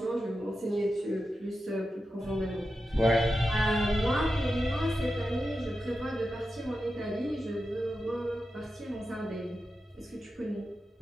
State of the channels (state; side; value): normal; both; correlation 0.90